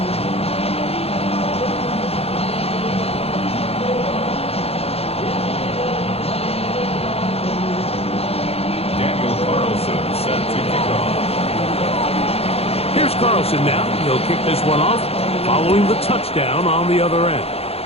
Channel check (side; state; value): right; late; 0.29 ms